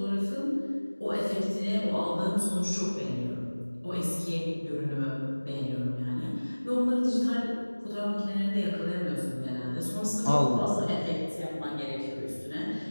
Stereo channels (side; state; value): both; inverted; correlation -1.00